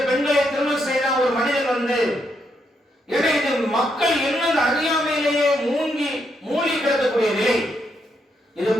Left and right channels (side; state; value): both; normal; correlation 0.79